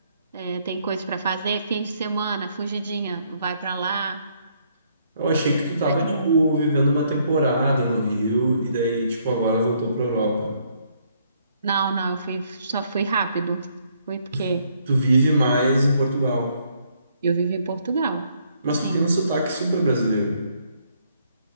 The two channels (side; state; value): both; inverted; correlation -0.69